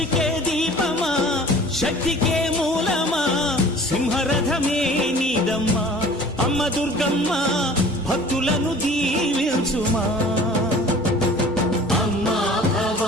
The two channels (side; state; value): right; noise; hum, 23 dB below the sound